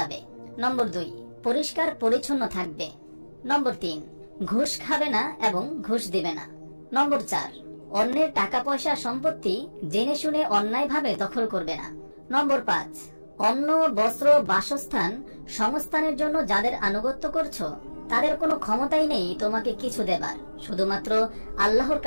নম্বর 2, পরিষ্কার পরিচ্ছন্ন থাকবে। নম্বর 3, ঘুষ খাবে না এবং ঘুষ দিবে না। নম্বর 4, অন্যের টাকা পয়সা সম্পত্তি জেনে শুনে অন্যায়ভাবে দখল করবে না। নম্বর 5, অন্ন, বস্ত্র, বাসস্থান, সংস্থানের জন্য যাদের আনুগত্য করছো, তাদের কোনো ক্ষমতাই নেই তোমাকে কিছু দেবার, শুধুমাত্র আল্লাহর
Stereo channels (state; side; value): inverted; both; correlation -1.00